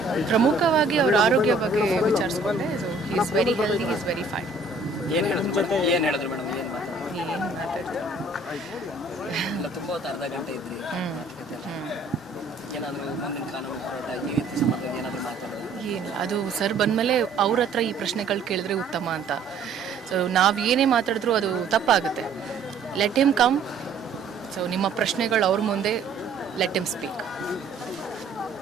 ಪ್ರಮುಖವಾಗಿ ಅವ್ರ ಆರೋಗ್ಯ ಬಗ್ಗೆ ವಿಚಾರಿಸ್ಕೊಂಡೆ. So is very healthy, is very fine. ಏನು ಹೇಳಿದ್ರು ಮೇಡಮ್? ಎಲ್ಲ ತುಂಬ ಹೊತ್ತು ಅರ್ಧ ಗಂಟೆ ಇದ್ರಿ ಏನಾದರೂ ಮುಂದಿನ ಕಾನೂನು ಹೋರಾಟ ಈ ರೀತಿ ಸಂಬಂಧವಾಗಿ ಏನಾದರೂ ಮಾತಾಡೋದು? ಏನು ಅದು ಸರ್ ಬಂದಮೇಲೆ ಅವ್ರ ಹತ್ರ ಈ ಪ್ರಶ್ನೆಗಳು ಕೇಳಿದ್ರೆ ಉತ್ತಮ ಅಂತ. ಸೊ ನಾವು ಏನೇ ಮಾತಾಡಿದ್ರೂ ಅದು ತಪ್ಪಾಗುತ್ತೆ. Let him come. ಸೊ ನಿಮ್ಮ ಪ್ರಶ್ನೆಗಳು ಅವ್ರ ಮುಂದೆ, let him speak.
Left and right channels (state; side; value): quieter; left; 3.7 dB